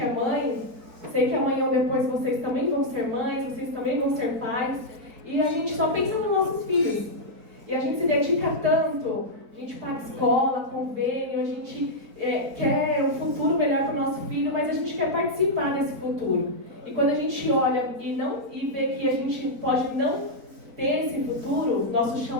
mãe, sei que amanhã ou depois vocês também vão ser mães, vocês também vão ser pais, e a gente só pensa nos nossos filhos. E a gente se dedica tanto, a gente paga escola, convênio, a gente quer um futuro melhor para o nosso filho, mas a gente quer participar desse futuro. E quando a gente olha e vê que a gente pode não ter esse futuro, nosso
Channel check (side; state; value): left; late; 4.3 ms